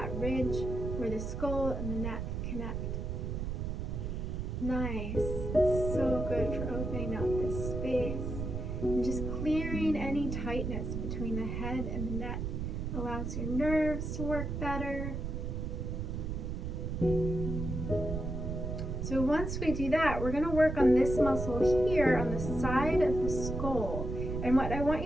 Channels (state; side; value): noise; right; rumble, 3 dB below the sound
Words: ridge where the skull and the neck connect. Nice. It's so good for opening up this space and just clearing any tightness between the head and the neck. Allows your nerves to work better. So once we do that, we're going to work on this muscle here on the side of the skull. And what I want